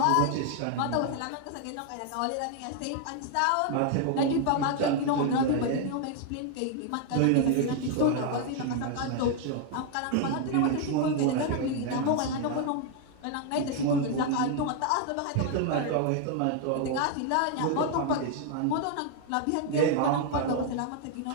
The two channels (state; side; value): different; both; correlation 0.00